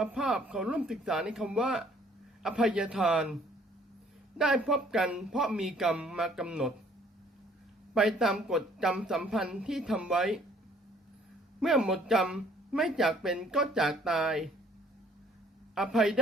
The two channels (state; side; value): normal; both; correlation 0.60